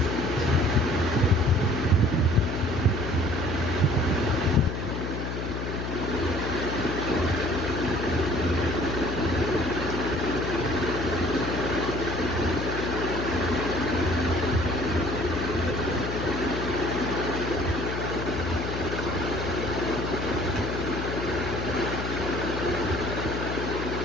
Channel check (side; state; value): left; noise; hum, 4 dB below the sound